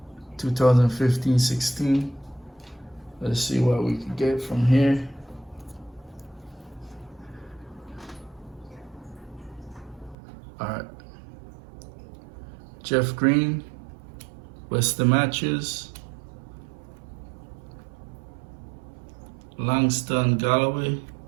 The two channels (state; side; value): drops out; left; at 10.2 s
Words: 2015-16. Let's see what we can get from here. All right. Jeff Green, Western Matches, Langston Galloway,